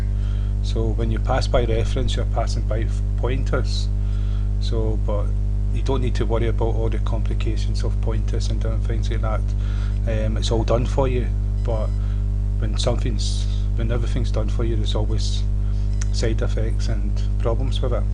So when you pass by reference, you're passing by pointers. So, but you don't need to worry about all the complications of pointers and different things like that. It's all done for you. But when everything's done for you, there's always side effects and problems with it.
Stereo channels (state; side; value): identical; both; correlation 1.00